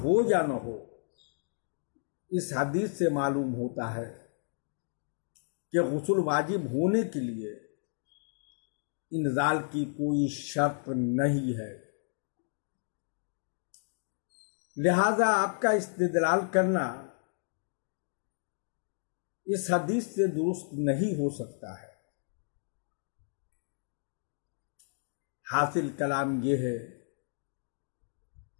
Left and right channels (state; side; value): silent; right; digital silence